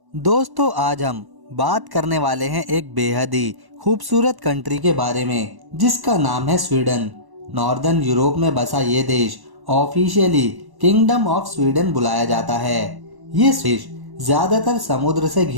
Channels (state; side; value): late; left; 1.1 ms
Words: दोस्तों आज हम बात करने वाले हैं एक बेहद ही खूबसूरत कंट्री के बारे में जिसका नाम है स्वीडन। नॉर्दर्न यूरोप में बसा ये देश ऑफिशियली किंगडम ऑफ स्वीडन बुलाया जाता है। ये देश ज्यादातर समुद्र से